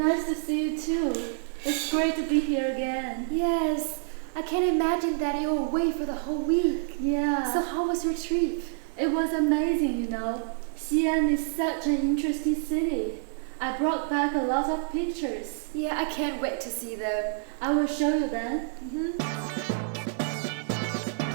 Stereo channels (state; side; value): silent; left; digital silence